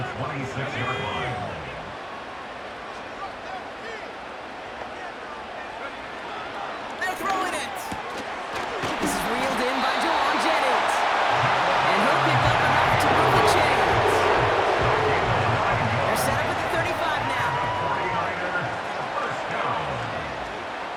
26-yard line. They're throwing it. This is reeled in by Jawan Jennings. And he'll pick up enough to move the chains. They're set up at the 35 now. 49ers, first down.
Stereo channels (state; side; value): identical; both; correlation 1.00